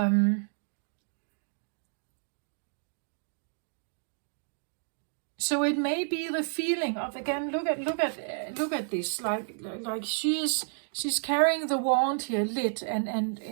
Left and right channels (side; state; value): left; silent; digital silence